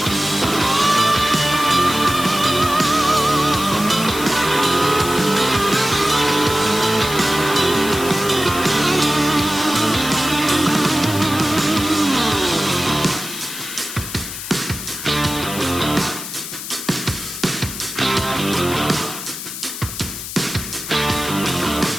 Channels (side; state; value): left; noise; hiss, 8 dB below the sound